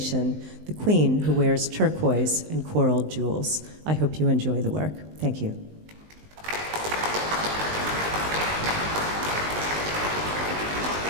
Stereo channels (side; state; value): left; late; 19 ms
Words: the queen who wears turquoise and coral jewels. I hope you enjoy the work. Thank you.